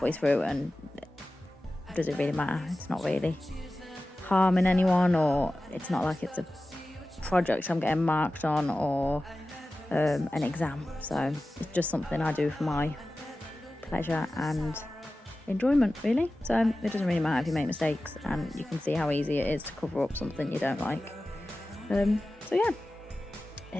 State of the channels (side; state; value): both; normal; correlation 0.95